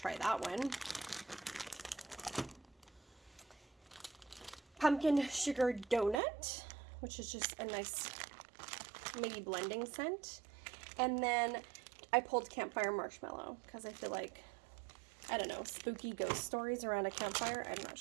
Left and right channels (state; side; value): drops out; left; at 6.2 s